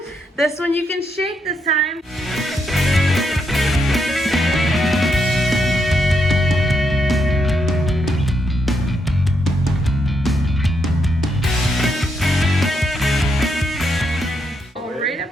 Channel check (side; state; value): both; normal; correlation 0.79